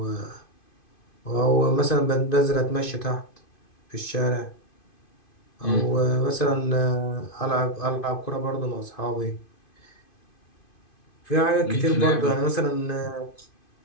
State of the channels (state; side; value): late; right; 2.5 ms